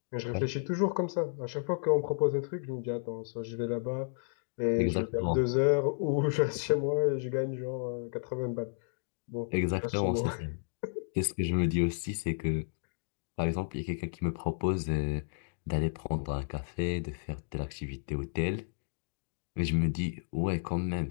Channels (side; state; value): right; silent; digital silence